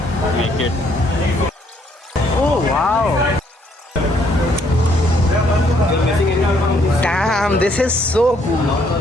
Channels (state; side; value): normal; both; correlation 0.68